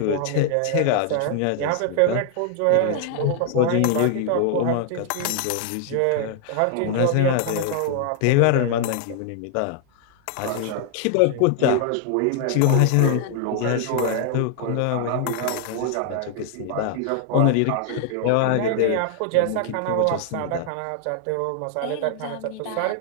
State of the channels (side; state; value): both; different; correlation 0.00